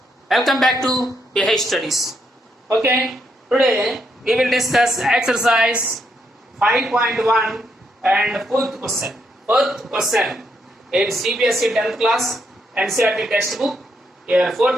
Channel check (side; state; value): both; normal; correlation 0.77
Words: Welcome back to BH Studies. Okay, today we will discuss exercise 5.1 and fourth question. Fourth question in CBSE 10th class NCERT textbook. Here,